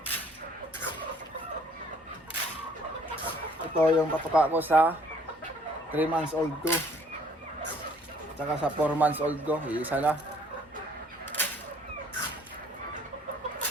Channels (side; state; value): both; normal; correlation 0.59